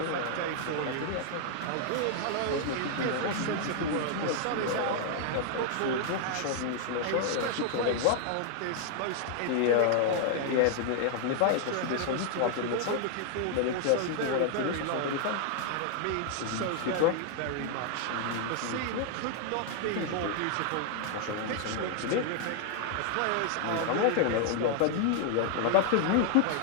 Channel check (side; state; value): both; different; correlation 0.00